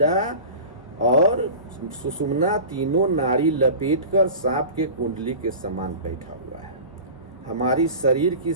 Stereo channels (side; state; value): both; inverted; correlation -0.36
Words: और सुषुम्ना तीनों नाड़ी लपेटकर सांप के कुंडली के समान बैठा हुआ है। हमारी शरीर की